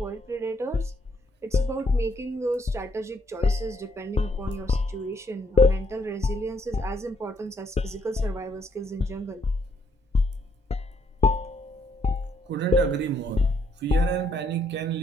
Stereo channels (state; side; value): normal; both; correlation 0.72